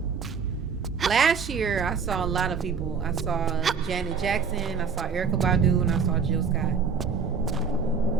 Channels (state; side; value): quieter; left; 5.8 dB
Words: last year I saw a lot of people. I saw Janet Jackson, I saw Erykah Badu, and I saw Jill Scott.